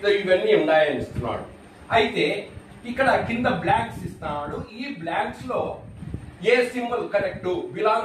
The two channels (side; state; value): both; identical; correlation 1.00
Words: ఇవన్నీ ఉన్నాయని ఇస్తున్నాడు. అయితే ఇక్కడ కింద బ్లాంక్స్ ఇస్తున్నాడు. ఈ బ్లాంక్స్ లో ఏ symbol correct,